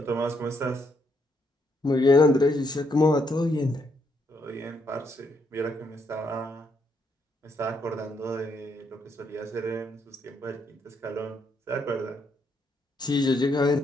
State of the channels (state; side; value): normal; both; correlation 0.75